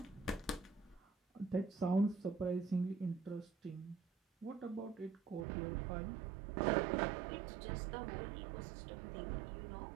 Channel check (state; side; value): drops out; left; at 5.5 s